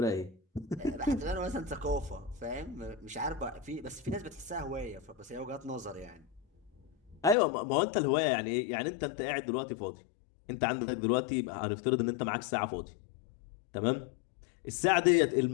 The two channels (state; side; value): drops out; right; at 7.4 s